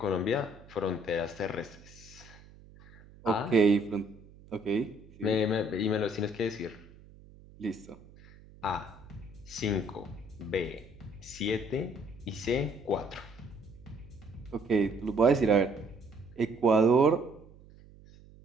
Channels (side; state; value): right; noise; hum, 22 dB below the sound